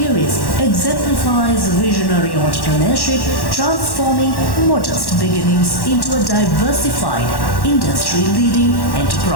exemplifies visionary entrepreneurship, transforming modest beginnings into a diversified, industry-leading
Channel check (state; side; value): late; right; 1.1 ms